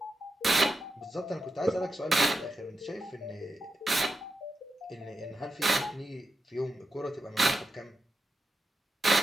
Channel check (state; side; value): normal; both; correlation 0.88